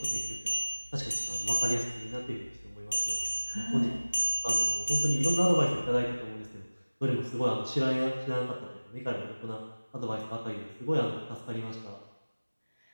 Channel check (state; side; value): inverted; both; correlation -1.00